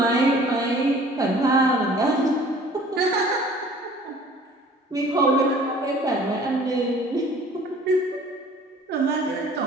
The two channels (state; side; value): normal; both; correlation 0.50